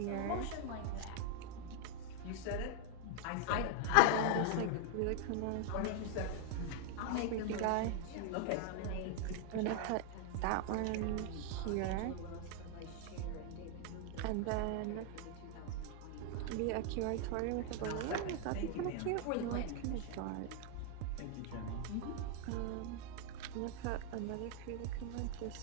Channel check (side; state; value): both; different; correlation 0.00